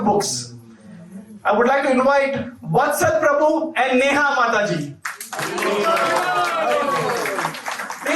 books. I would like to invite Vatsal Prabhu and Neha Mataji.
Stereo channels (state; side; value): identical; both; correlation 1.00